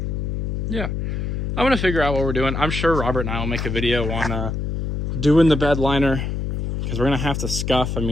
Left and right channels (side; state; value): left; noise; hum, 2 dB below the sound